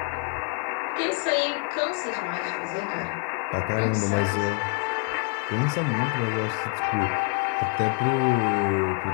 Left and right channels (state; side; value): quieter; right; 32.1 dB